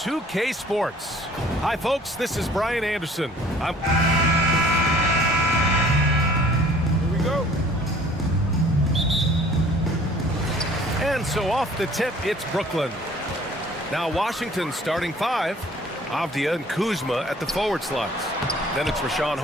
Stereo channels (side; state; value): both; normal; correlation 0.52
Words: Sports. Hi, folks. This is Brian Anderson. Here we go. And so off the tip, it's Brooklyn. Now Washington starting 5. Avdia and Kuzma at the forward slots. Then it's Rashawn